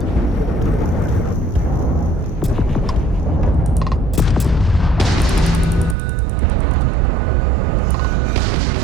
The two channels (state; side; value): drops out; left; at 6.0 s